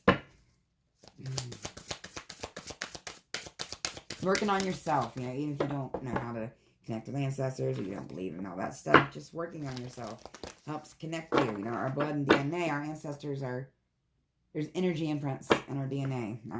Working on yourself, even if you don't know how to connect with ancestors, or you don't believe in all that stuff, just working on yourself helps connect you. Our blood and DNA, our ancestors there's energy imprints in our DNA, all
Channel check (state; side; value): identical; both; correlation 1.00